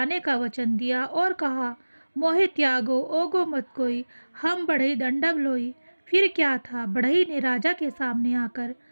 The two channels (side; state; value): both; inverted; correlation -1.00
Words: का वचन दिया और कहा, मोहे त्यागो ओगो मत कोई, हम बढ़ई दंडब लोई। फिर क्या था, बढ़ई ने राजा के सामने आकर